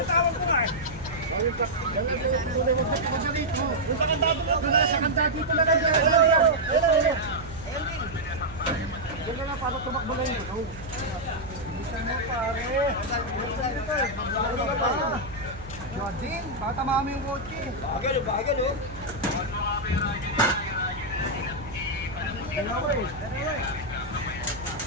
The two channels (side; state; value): right; noise; hum, 16 dB below the sound